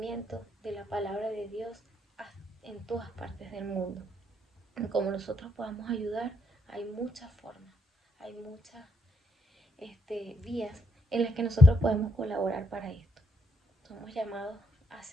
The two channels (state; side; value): normal; both; correlation 0.75